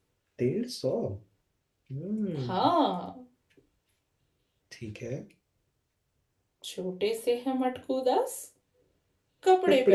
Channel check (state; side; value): identical; both; correlation 1.00